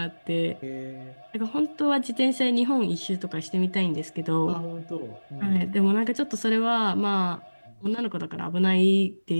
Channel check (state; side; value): inverted; both; correlation -1.00